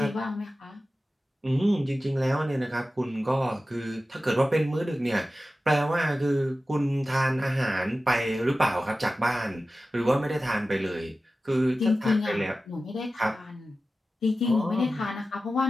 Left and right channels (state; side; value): normal; both; correlation 0.95